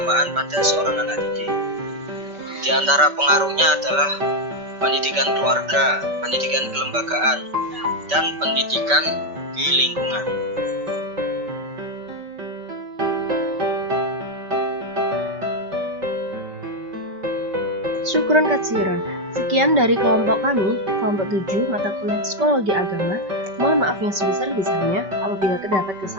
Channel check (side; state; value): left; late; 5.2 ms